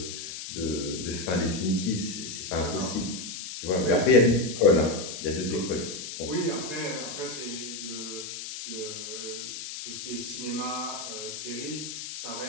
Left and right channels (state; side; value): noise; left; hiss, 8 dB below the sound